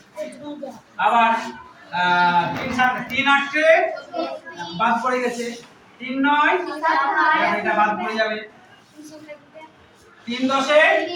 আবার 3 7 3 8 কে বাদ পড়ে গেছে। 3 9 এটা বাদ পড়ে যাবে। 3 10 এ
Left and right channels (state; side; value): identical; both; correlation 1.00